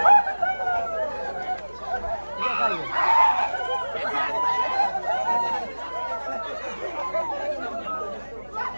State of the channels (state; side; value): inverted; both; correlation -1.00